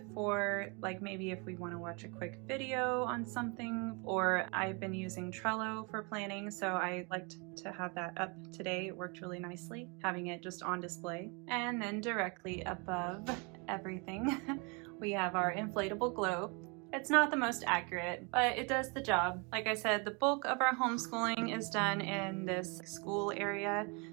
for maybe if we want to watch a quick video on something, or I've been using Trello for planning, so I liked to have that up today. It worked really nicely, having it just on display. And then directly above everything, we have our inflatable globe. It's not the most accurate, but it does the job. Like I said, the bulk of our homeschooling is done in this school area,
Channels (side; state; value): left; quieter; 31.9 dB